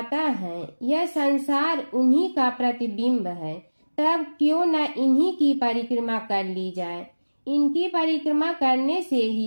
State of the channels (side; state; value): both; inverted; correlation -1.00